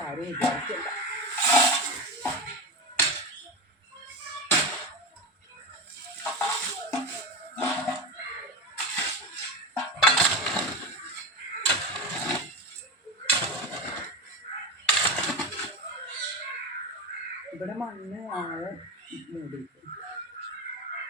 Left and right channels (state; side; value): normal; both; correlation 0.20